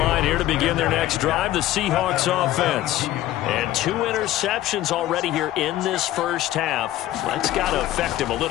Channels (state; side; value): quieter; right; 14.4 dB